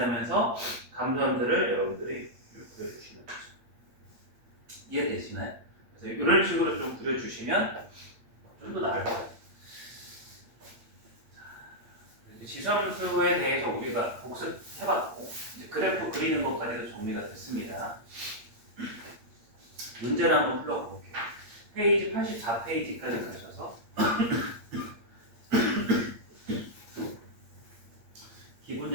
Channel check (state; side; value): late; left; 8.7 ms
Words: 감소함수를 여러분들이 그려주시는 거죠. 이해되시나요? 그래서 이런 식으로 좀 그려주시면 좀 더 나을 거예요. 지수함수에 대해서 우리가 복습해봤고 이제 그래프 그리는 것까지도 정리가 됐습니다. 문제를 한번 풀어볼게요. 페이지 84페이지까지 가셔서 기본